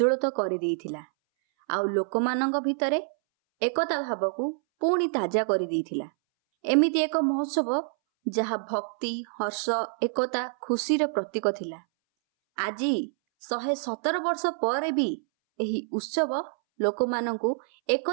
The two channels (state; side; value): silent; left; 60 dB below the other